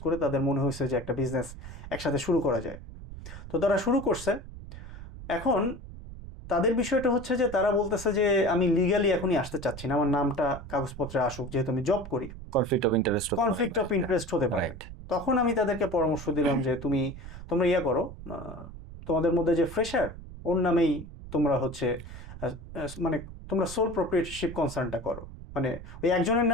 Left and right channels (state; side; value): noise; right; rumble, 13 dB below the sound